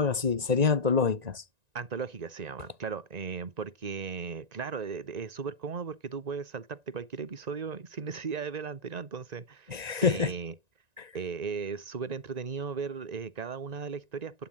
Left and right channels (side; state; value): left; late; 1.9 ms